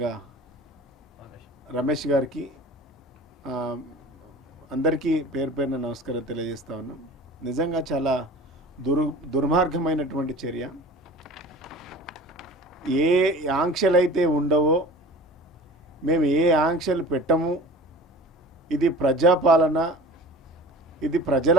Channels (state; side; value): normal; both; correlation 0.40